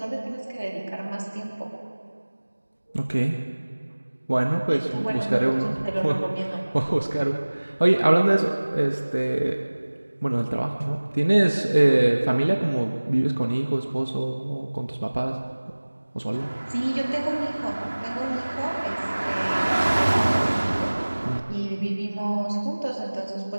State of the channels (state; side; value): inverted; both; correlation -1.00